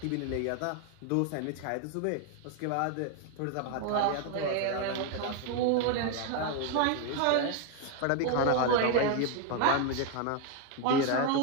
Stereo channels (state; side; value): different; both; correlation 0.01